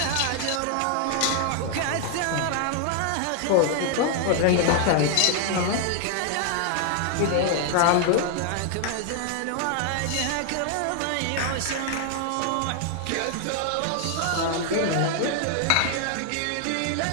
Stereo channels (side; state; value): both; different; correlation 0.00